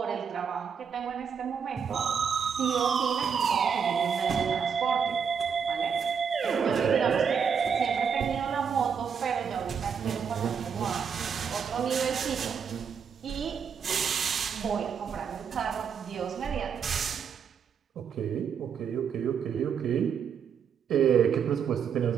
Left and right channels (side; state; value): left; quieter; 6.8 dB